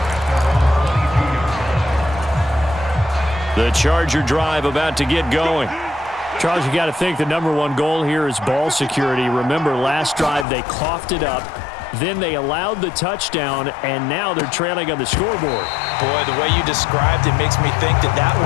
The Charger drive about to get going. Charles, you got to think the #1 goal here is ball security. Remember, last drive they coughed it up. Then they allowed the touchdown, and now they're trailing on the scoreboard. Boy, the way you described it makes me think that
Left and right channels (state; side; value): drops out; right; at 10.5 s